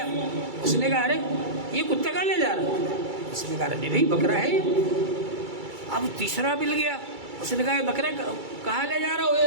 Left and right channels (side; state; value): left; late; 2.3 ms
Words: اس نے کہا ارے یہ کتا کہاں لے جا رہا؟ اس نے کہا نہیں بھائی بکرا ہے۔ اب تیسرا مل گیا، اس نے کہا بکرا کہاں لے جا رہا ہو